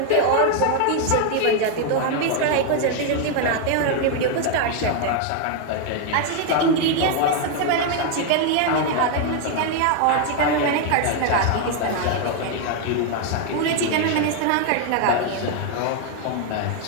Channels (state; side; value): different; both; correlation 0.00